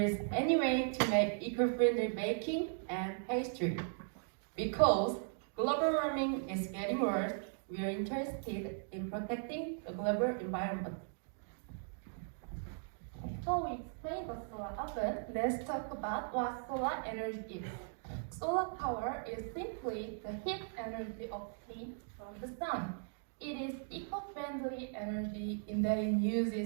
any way to make eco-friendly baking and pastry. Because global warming is getting worse, we are interested in protecting the global environment. Before we explain the solar oven, let's talk about what solar energy is. Solar power is simply the heat energy obtained from the sun. It is eco-friendly energy in that it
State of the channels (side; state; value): left; silent; digital silence